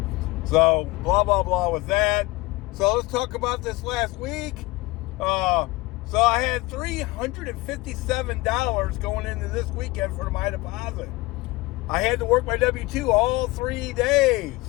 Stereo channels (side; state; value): right; quieter; 21.3 dB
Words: is. So blah, blah, blah with that. So let's talk about this last week. So I had $357 going into this weekend for my deposit. I had to work my W-2 all 3 days.